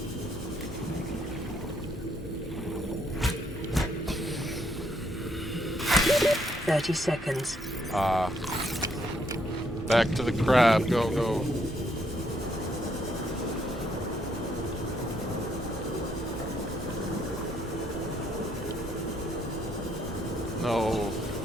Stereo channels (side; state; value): both; normal; correlation 0.72